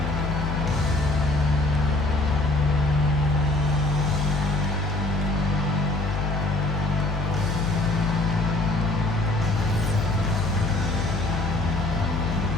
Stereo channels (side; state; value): left; noise; hum, 2 dB below the sound